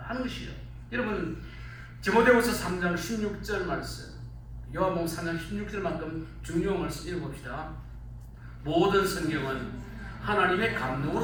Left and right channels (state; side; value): identical; both; correlation 1.00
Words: 하는 것이죠. 여러분 디모데후서 3장 16절 말씀 요한복음 3장 16절만큼 중요한 말씀 읽어봅시다. 모든 성경은 하나님의